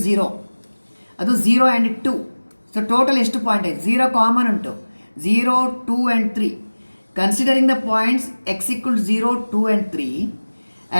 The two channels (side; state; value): both; inverted; correlation -1.00